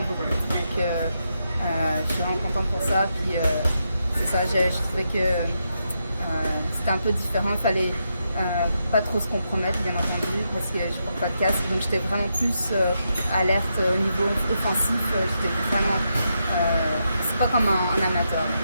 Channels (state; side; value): inverted; both; correlation -0.83